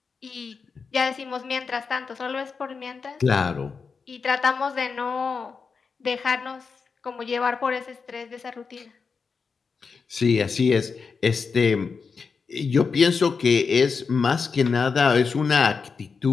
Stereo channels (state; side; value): quieter; right; 5.2 dB